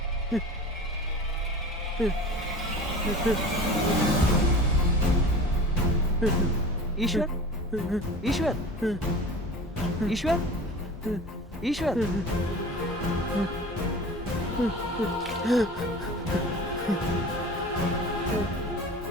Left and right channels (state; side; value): normal; both; correlation 0.38